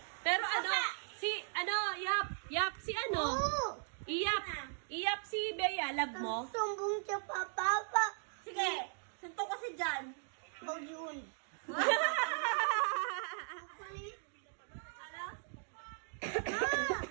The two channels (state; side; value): silent; left; 52 dB below the other